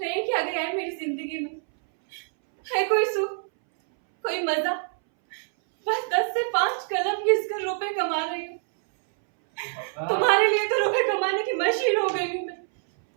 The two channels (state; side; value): silent; left; 61 dB below the other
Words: क्या गया है मेरी जिंदगी में? है कोई सुख, कोई मजा? बस 10 से 5 कलम घिसकर रुपए कमा रही हूँ। तुम्हारे लिए तो रुपए कमाने की मशीन हो गई हूँ मैं।